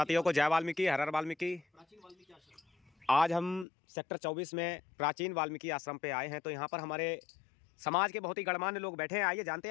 को जय वाल्मीकि, हर हर वाल्मीकि। आज हम सेक्टर 24 में प्राचीन वाल्मीकि आश्रम पे आए हैं। तो यहाँ पर हमारे समाज के बहुत ही गणमान्य लोग बैठे हैं। आइए जानते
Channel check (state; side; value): drops out; right; at 3.7 s